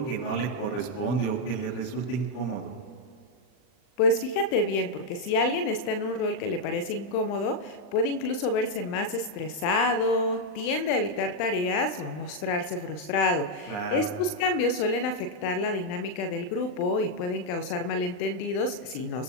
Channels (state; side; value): late; right; 39 ms